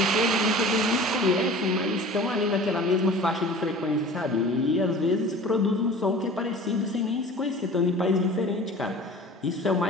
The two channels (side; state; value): both; normal; correlation 0.42